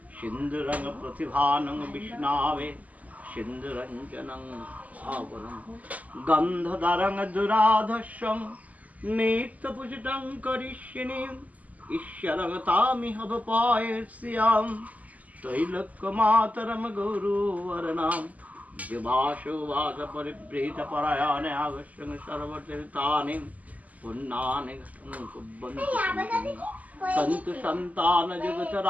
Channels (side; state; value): left; late; 0.075 ms